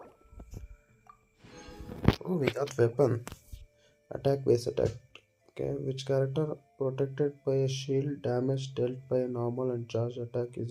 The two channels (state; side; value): identical; both; correlation 1.00